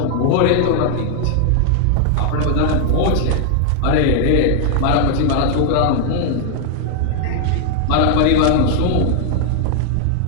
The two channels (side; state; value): both; different; correlation 0.00